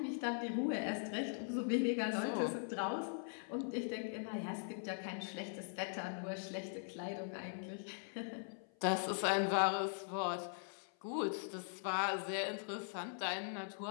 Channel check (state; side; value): silent; right; 50 dB below the other